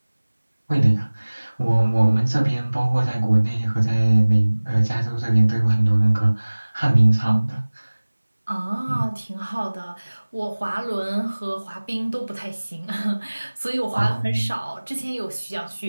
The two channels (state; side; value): inverted; both; correlation -1.00